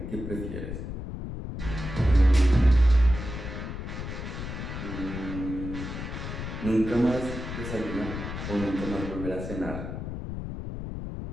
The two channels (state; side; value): noise; left; rumble, 6 dB below the sound